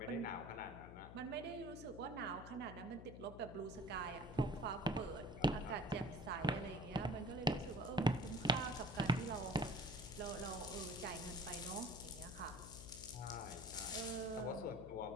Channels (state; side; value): noise; left; hum, 12 dB below the sound